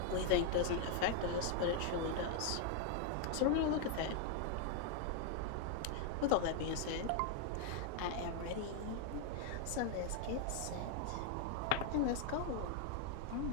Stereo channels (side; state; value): both; different; correlation 0.00